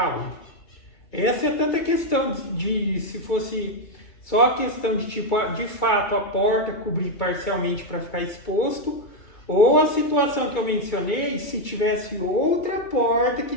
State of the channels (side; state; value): right; late; 2.3 ms